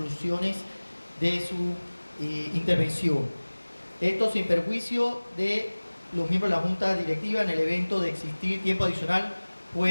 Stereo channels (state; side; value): inverted; both; correlation -1.00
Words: de su intervención. Esto sin perjuicio de los miembros de la junta directiva, en el evento de existir tiempo adicional,